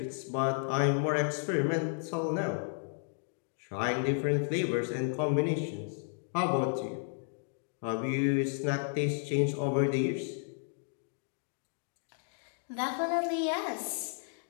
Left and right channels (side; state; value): right; silent; digital silence